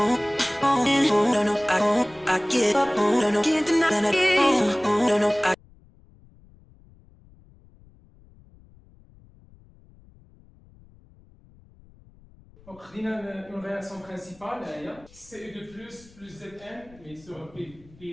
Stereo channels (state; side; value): noise; left; rumble, 26 dB below the sound